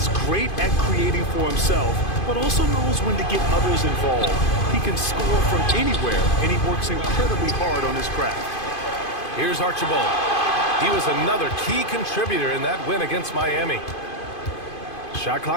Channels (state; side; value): late; right; 2.5 ms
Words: great at creating for himself, but also knows when to get others involved. He can score from anywhere, and he works incredibly hard on his craft. Here's Archibald. He was another key contributor in that win against Miami. Shot